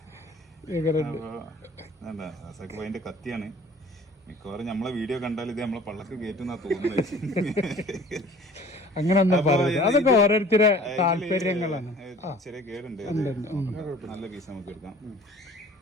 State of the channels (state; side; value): normal; both; correlation 0.48